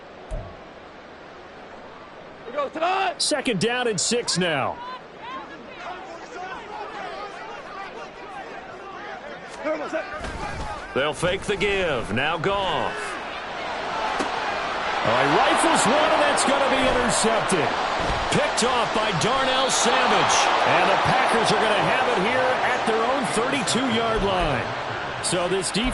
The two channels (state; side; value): identical; both; correlation 1.00